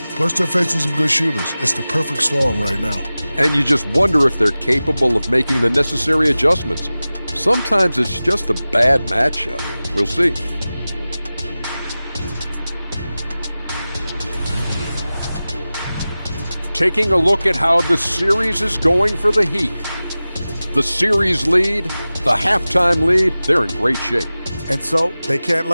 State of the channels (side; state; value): both; inverted; correlation -0.97